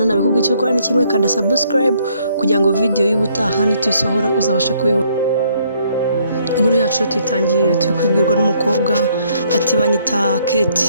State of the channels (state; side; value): inverted; both; correlation -0.67